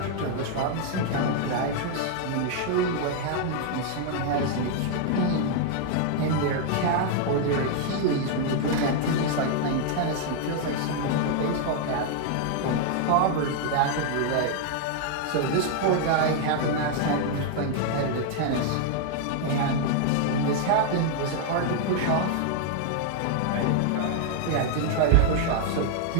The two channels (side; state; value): both; different; correlation 0.00